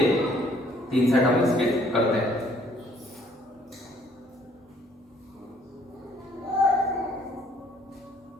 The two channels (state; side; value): normal; both; correlation 0.62